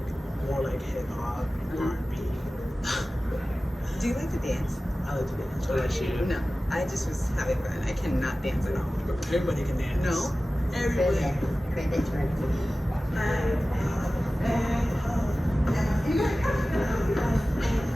more like hip hop, R&B. Do you like to dance? I like to dance. What about you? No, I just was having fun. I cannot dance at all. Everybody can dance. No. Everybody. Cribbage or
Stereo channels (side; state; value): both; normal; correlation 0.96